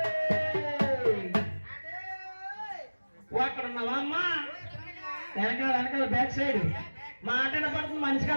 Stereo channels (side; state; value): both; inverted; correlation -1.00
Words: అక్కడ ఉన్నావా అమ్మా? వెనకాల వెనకాల బ్యాక్ సైడ్ మాట కనపడుతుంది, మనిషి